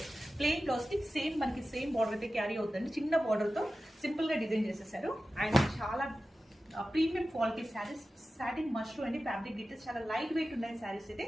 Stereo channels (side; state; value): both; normal; correlation 0.94